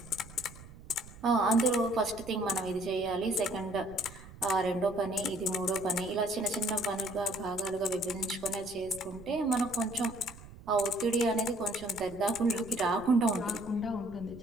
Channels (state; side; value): noise; right; rumble, 18 dB below the sound